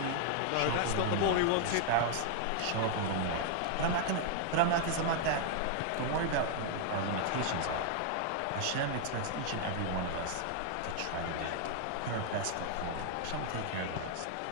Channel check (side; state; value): both; different; correlation 0.00